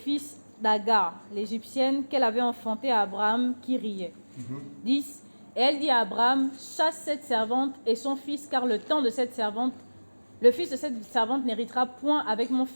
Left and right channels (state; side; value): inverted; both; correlation -1.00